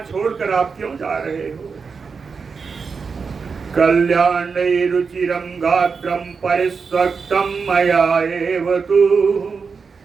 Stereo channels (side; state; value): left; quieter; 5.3 dB